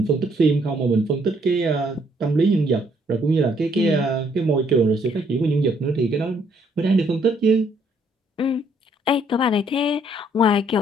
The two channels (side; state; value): both; normal; correlation 0.68